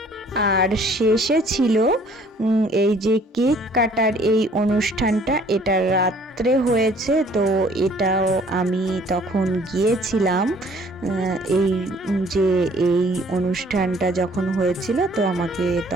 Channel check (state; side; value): normal; both; correlation 0.57